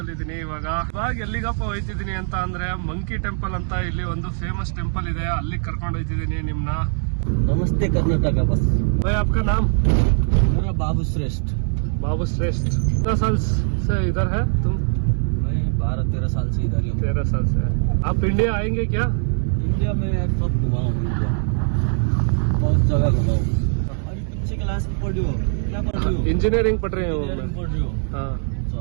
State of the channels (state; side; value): silent; left; 64 dB below the other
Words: ಇದೀನಿ. ಇವಾಗ ಎಲ್ಲಿಗಪ್ಪ ಹೋಯ್ತಿದ್ದೀನಿ ಅಂತ ಅಂದ್ರೆ ಮಂಕಿ ಟೆಂಪಲ್ ಅಂತ ಇಲ್ಲಿ ಒಂದು ಫೇಮಸ್ ಟೆಂಪಲ್ ಇದೆ, ಅಲ್ಲಿ ಕರ್ಕೊಂಡು ಹೋಯ್ತಿದ್ದೀನಿ ನಿಮ್ನ. नमस्ते कर्नाटका बस। भाई आपका नाम? मेरा बाबू श्रेष्ठ। बाबू श्रेष्ठ। कितना साल से इधर है तुम? मैं 12-13 साल से इधर ही हूँ। 13 साल से। आप इंडिया आएंगे क्या? इंडिया में सब घुमा हूँ, इंडिया बहुत जगह घुमा हूँ। अभी कौन सी क्लास में पढ़ रही हो? क्या पढ़ रही हो? इंजीनियरिंग पढ़ रहे हो? इंजीनियरिंग पढ़ रही हो? हाँ।